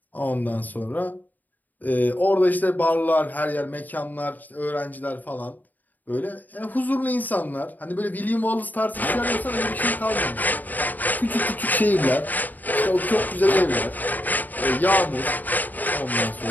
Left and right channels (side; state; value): right; late; 0.084 ms